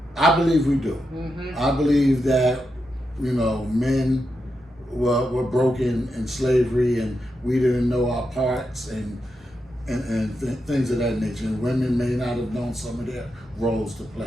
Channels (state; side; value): normal; both; correlation 0.86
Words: I believe we do. I believe that, you know, men were broken in slavery and we didn't know our parts and things of that nature. And women may not have known some of their roles to